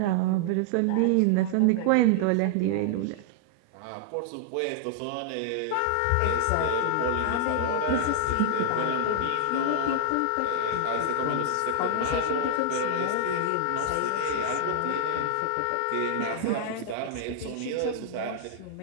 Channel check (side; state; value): both; different; correlation -0.01